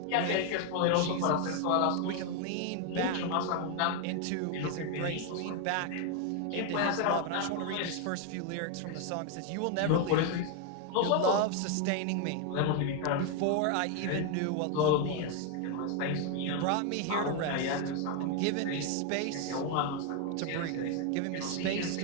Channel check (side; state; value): both; different; correlation 0.01